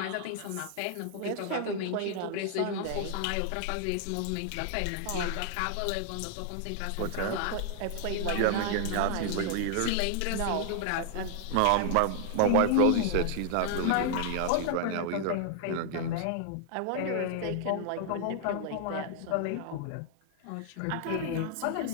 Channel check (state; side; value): different; both; correlation 0.00